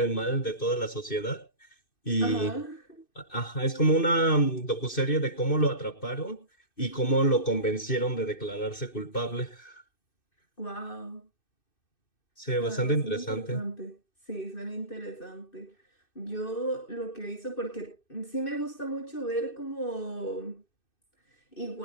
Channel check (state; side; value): late; right; 2.6 ms